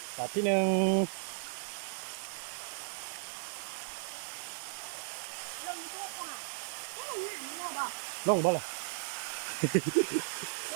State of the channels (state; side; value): silent; left; digital silence